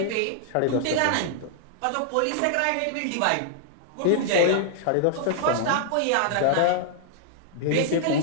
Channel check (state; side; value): different; both; correlation -0.01